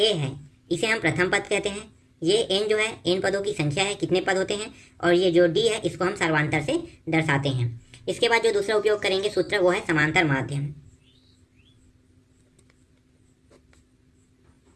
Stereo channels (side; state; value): both; identical; correlation 1.00